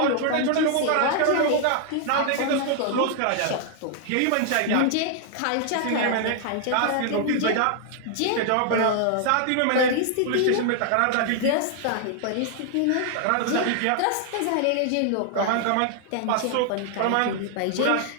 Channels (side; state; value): both; different; correlation 0.00